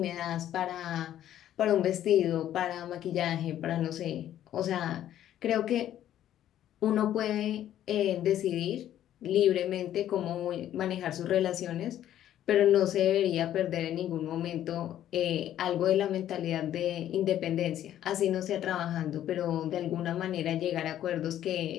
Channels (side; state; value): right; quieter; 11.7 dB